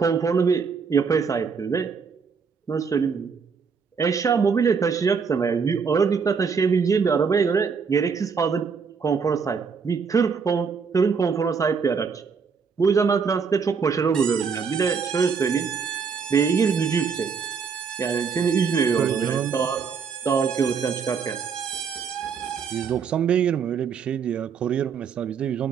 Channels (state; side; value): quieter; left; 5.9 dB